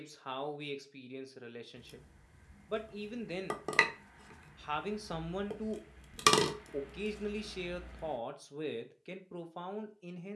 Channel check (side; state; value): both; identical; correlation 1.00